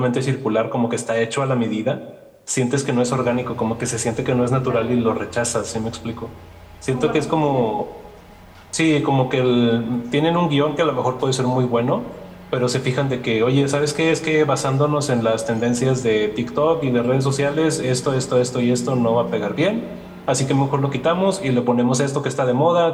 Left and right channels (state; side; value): identical; both; correlation 1.00